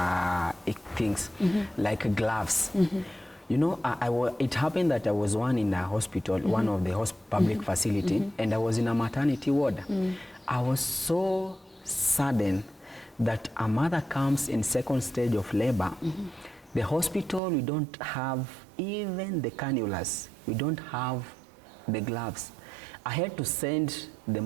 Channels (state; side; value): drops out; left; at 17.4 s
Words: things like gloves. You know, it happened that I was in a hospital, one of the public facility, and I was in a maternity ward. I was so saddened that a mother comes in second stage of labor. The hospital, we don't have even the cannulas. We don't have the gloves. I had to send the